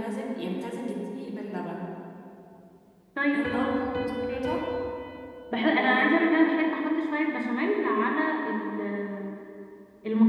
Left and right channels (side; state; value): both; identical; correlation 1.00